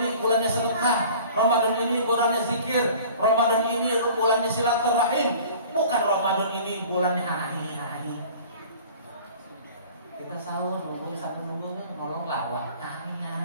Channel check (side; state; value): both; inverted; correlation -0.46